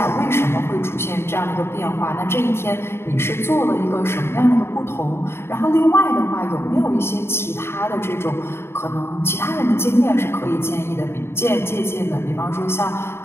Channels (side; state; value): right; late; 0.12 ms